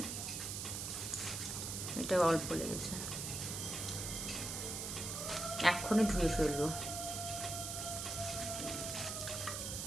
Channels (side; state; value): right; noise; hiss, 4 dB below the sound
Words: এটা অল্প লেগেছে, এক্ষুনি ধুয়ে ফেলবো।